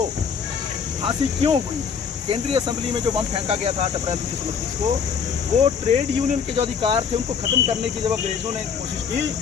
फांसी क्यों हुई? केंद्रीय असेंबली में जो बम फेंका गया था 8 अप्रैल 1929 को, वो ट्रेड यूनियन के जो अधिकार थे उनको ख़त्म करने की जब अंग्रेज़ों ने कोशिश की,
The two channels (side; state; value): right; quieter; 6.5 dB